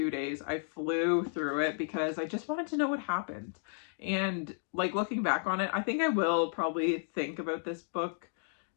days. I flew through it because I just wanted to know what happened. And like looking back on it, I think I will probably think about this book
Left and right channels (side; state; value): right; silent; digital silence